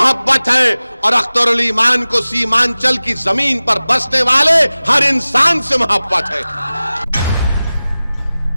है और अख्तरुल ईमान को सीमांचल की जमीन पर बसने वाले हर इंसान से मोहब्बत है।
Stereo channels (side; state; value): both; inverted; correlation -0.97